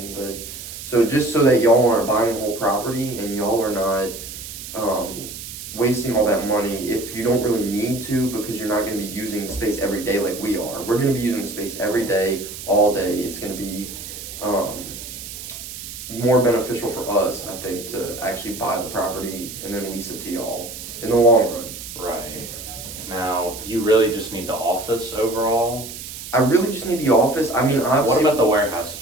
But so just so that y'all aren't buying the whole property and y'all are not wasting all that money if you don't really need to, because you're not gonna be using the space every day like we are. We're gonna be using the space every day, all day. It's gonna be more beneficial for us, I think, to actually buy the property and then lease it to y'all in the long run. Right. Now, you really just need the office overall. I really just need the office. I mean, What obviously, about the warehouse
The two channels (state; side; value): noise; right; hiss, 11 dB below the sound